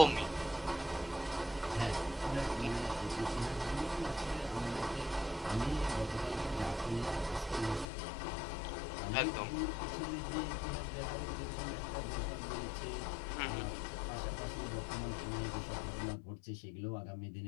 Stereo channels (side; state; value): right; drops out; at 7.9 s